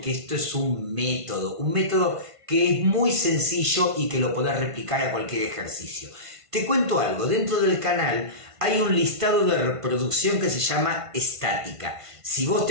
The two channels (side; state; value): left; late; 1.5 ms